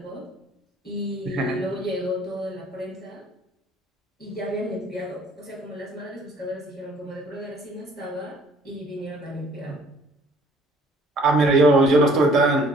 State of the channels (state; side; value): normal; both; correlation 0.56